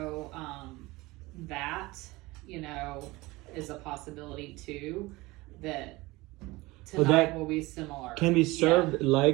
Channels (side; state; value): left; quieter; 21.2 dB